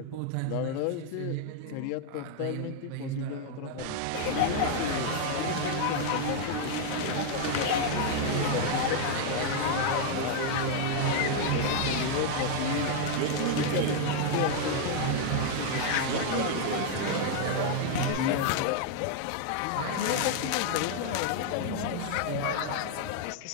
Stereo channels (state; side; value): different; both; correlation 0.00